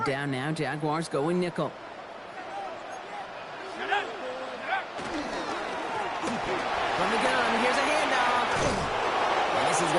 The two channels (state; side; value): identical; both; correlation 1.00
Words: down now, Jaguars going nickel. From the gun, here's a handoff. And this is